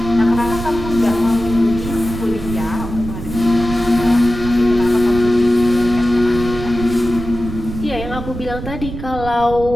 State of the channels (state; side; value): noise; right; rumble, 9 dB below the sound